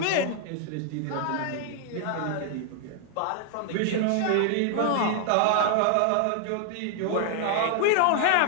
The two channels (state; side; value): different; both; correlation 0.00